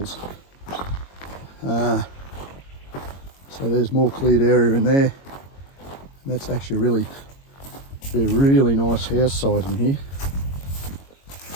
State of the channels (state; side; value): late; right; 22 ms